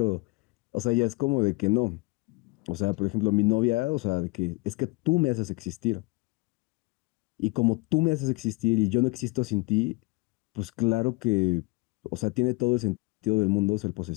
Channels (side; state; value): right; quieter; 25.2 dB